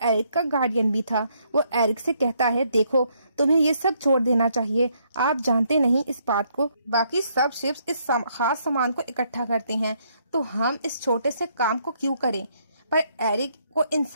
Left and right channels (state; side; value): inverted; both; correlation -0.71